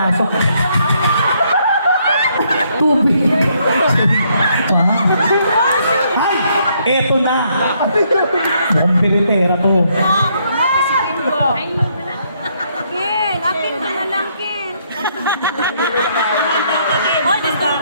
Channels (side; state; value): both; inverted; correlation -0.71